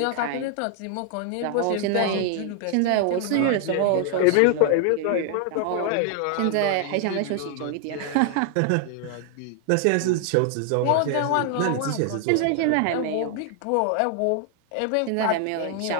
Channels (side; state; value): both; different; correlation 0.00